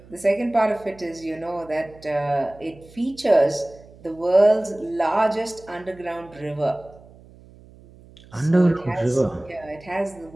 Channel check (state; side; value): noise; right; hum, 23 dB below the sound